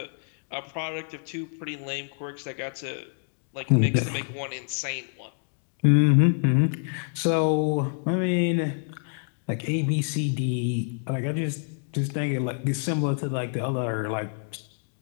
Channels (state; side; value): silent; right; 60 dB below the other